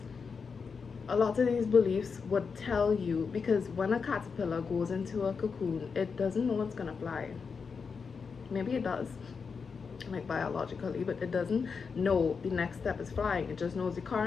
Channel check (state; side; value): quieter; right; 5.5 dB